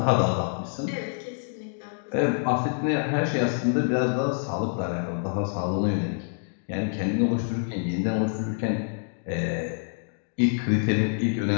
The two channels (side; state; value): right; silent; digital silence